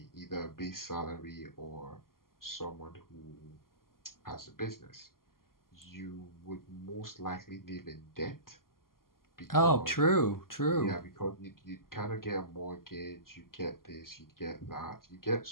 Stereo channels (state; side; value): late; right; 0.92 ms